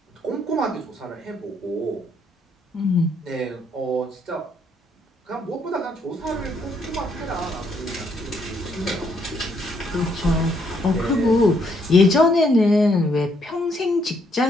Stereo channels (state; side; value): normal; both; correlation 0.71